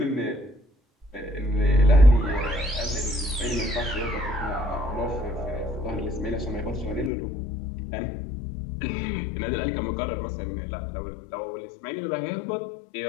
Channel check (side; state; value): right; drops out; at 7.1 s